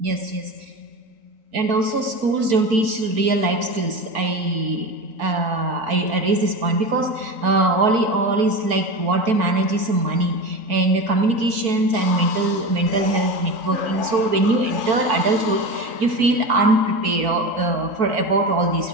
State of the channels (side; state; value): left; late; 4.5 ms